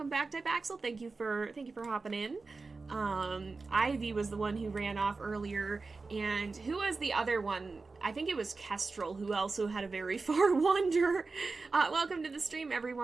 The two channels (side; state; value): left; quieter; 4.0 dB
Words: back, Axel. Thank you for hopping in. Ivy was the one who ran off earlier, and who was the other one? I think it was Kestrel, who also had a very far wander. Welcome to the stream,